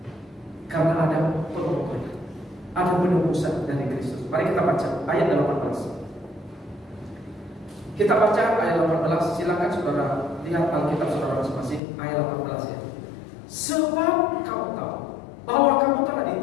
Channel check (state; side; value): drops out; right; at 11.8 s